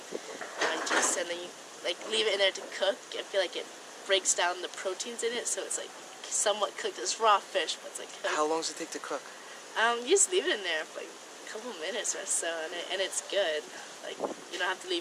juice, and then you like leave it in there to cook. I feel like it breaks down the proteins in it, so it's like somewhat cooked. It's raw fish, but it's like cooked. How long does it take to cook? You just leave it in there for like a couple minutes or so, and it's good. Like, you don't have to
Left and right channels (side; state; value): both; identical; correlation 1.00